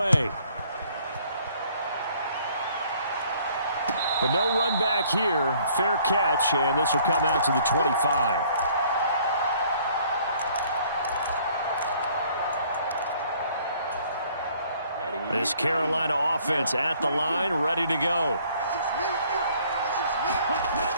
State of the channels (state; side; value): inverted; both; correlation -0.60